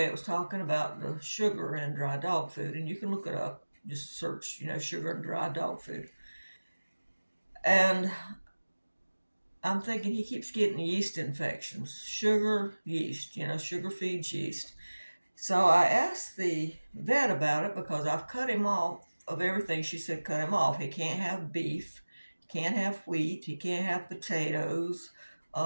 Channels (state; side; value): inverted; both; correlation -1.00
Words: it was talking about the sugar in dry dog food, and you can look it up. Just search, sugar in dry dog food. And I'm thinking he keeps getting yeast infections. Sugar, yeast, sugar feeds yeast. So I asked the vet about it because I've cut him off of everything. She said cut him off. He can't have beef, can't have wheat, he can't have potatoes,